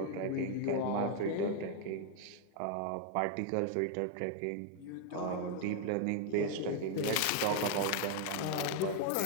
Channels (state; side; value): different; both; correlation 0.00